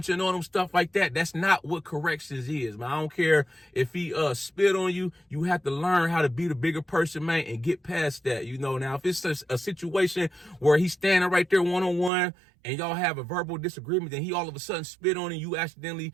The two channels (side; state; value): left; drops out; at 12.1 s